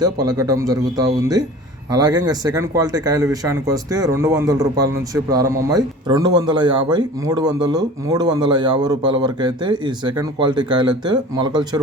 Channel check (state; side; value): normal; both; correlation 0.41